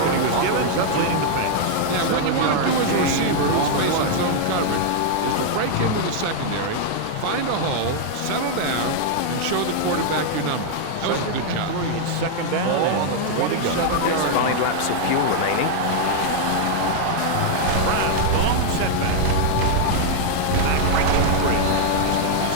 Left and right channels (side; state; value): both; different; correlation 0.00